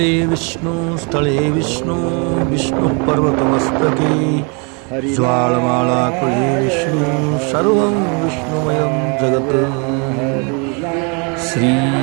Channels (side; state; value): left; quieter; 34.5 dB